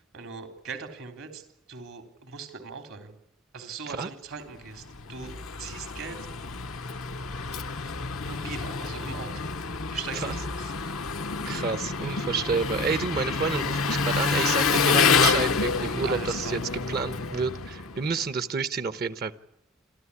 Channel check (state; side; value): normal; both; correlation 0.32